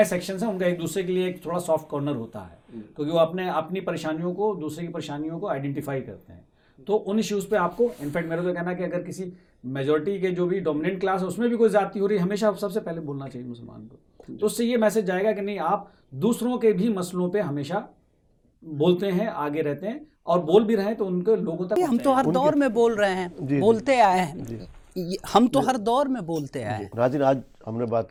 सेक्शंस हैं उनका एक दूसरे के लिए एक थोड़ा सॉफ्ट कॉर्नर होता है, क्योंकि वो अपनी परेशानियों को, दूसरे की परेशानियों को आइडेंटिफाई करते हैं। तो उन इश्यूज़ पे आपको, इनफैक्ट मेरा तो कहना है कि अगर किसी मेजॉरिटी के जो भी डोमिनेंट क्लास है उसमें भी कोई जाति हो रही है, हमेशा सबसे पहले बोलना चाहिए मुसलमान को। तो उससे ये मैसेज जाएगा कि नहीं, आप दूसरों के भी मसलों पे हमेशा बोलते हैं, आगे रहते हैं, और बोल भी रहे हैं तो उनके लोगों तक हम तो हर दौर में बोल रहे हैं, जी, बोलते आए हैं, हम तो हर दौर में बोलते आए हैं। नाज़रीन, आज हमने बात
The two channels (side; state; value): both; identical; correlation 1.00